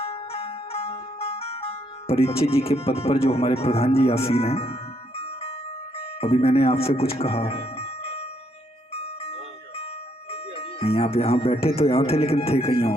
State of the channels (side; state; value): both; normal; correlation 0.73